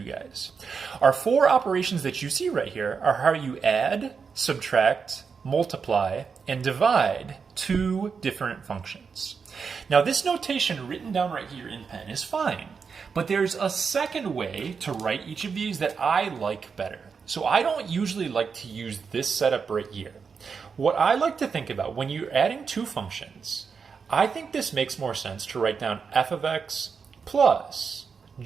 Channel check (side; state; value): left; quieter; 5.7 dB